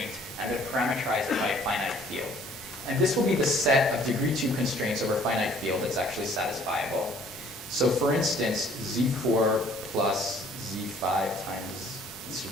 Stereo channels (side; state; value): both; normal; correlation 0.57